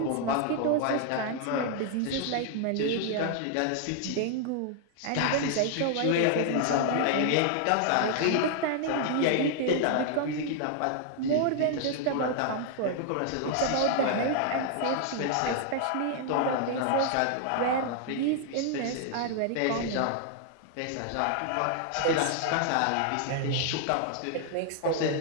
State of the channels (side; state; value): both; different; correlation 0.00